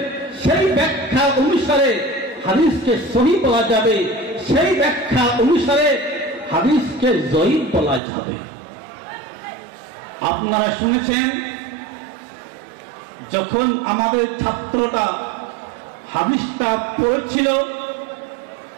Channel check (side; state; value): left; drops out; at 8.0 s